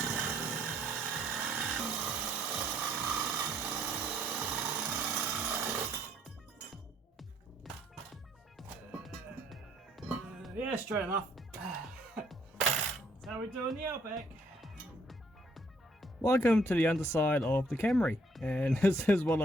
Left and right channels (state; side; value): normal; both; correlation 0.66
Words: Yeah, straight enough. That's how we do in the Outback. Welcome to the underside of the Camry, and this is what